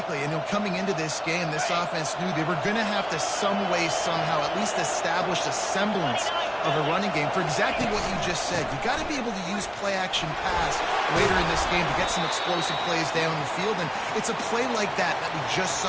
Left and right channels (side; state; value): both; identical; correlation 1.00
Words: And coming into this game, this offense knew they were going to have to some way, somehow, at least establish a semblance of a running game for exactly what you just said. You got to be able to use play-action pass later in this game to get some explosive plays down the field, and it's a play like that we just